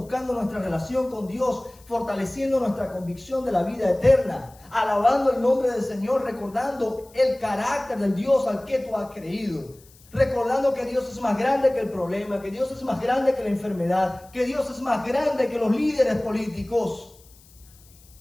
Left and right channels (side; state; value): left; noise; hiss, 26 dB below the sound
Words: nuestra relación con Dios, fortaleciendo nuestra convicción de la vida eterna, alabando el nombre del Señor, recordando el carácter del Dios al que tú has creído. Recordando que Dios es más grande que el problema, que Dios es más grande que la enfermedad, que Dios es más grande que los líderes políticos,